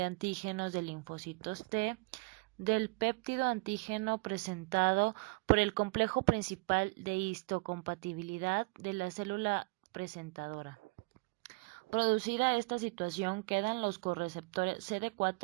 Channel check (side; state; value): left; quieter; 29.4 dB